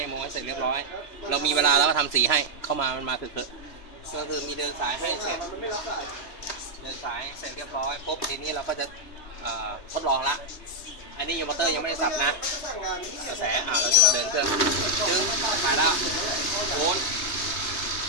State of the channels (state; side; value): late; right; 3.2 ms